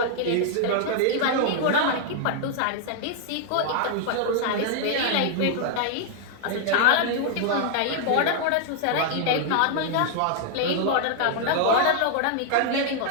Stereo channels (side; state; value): both; different; correlation 0.00